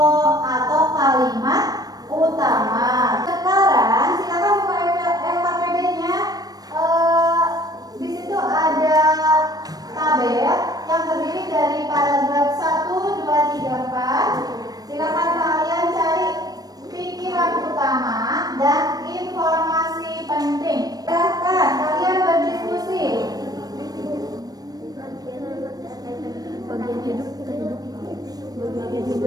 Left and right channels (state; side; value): late; left; 0.19 ms